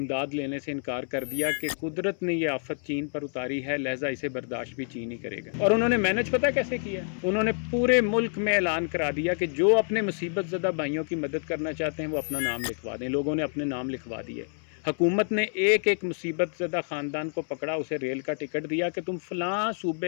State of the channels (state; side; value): silent; right; 59 dB below the other